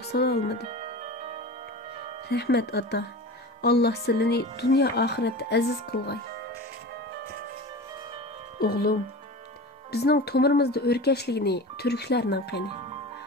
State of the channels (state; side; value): normal; both; correlation 0.32